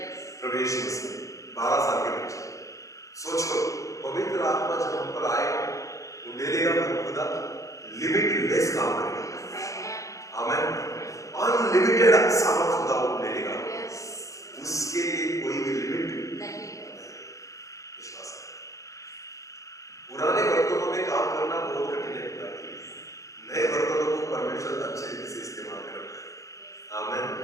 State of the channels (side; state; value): right; late; 0.16 ms